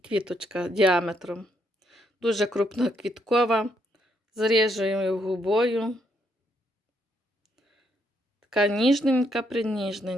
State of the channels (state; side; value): normal; both; correlation 0.74